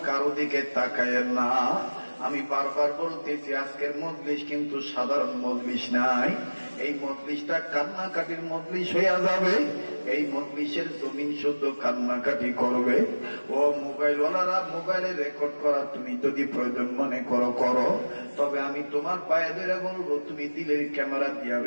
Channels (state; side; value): inverted; both; correlation -1.00